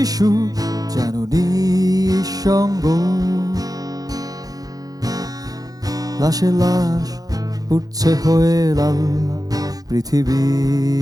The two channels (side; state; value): left; late; 0.18 ms